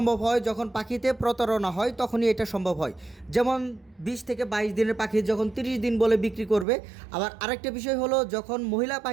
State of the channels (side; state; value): left; drops out; at 6.7 s